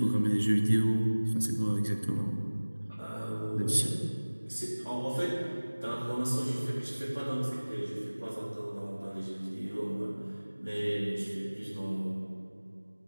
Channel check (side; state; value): both; inverted; correlation -1.00